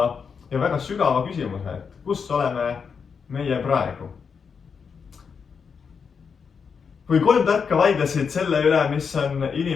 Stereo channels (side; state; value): right; quieter; 6.1 dB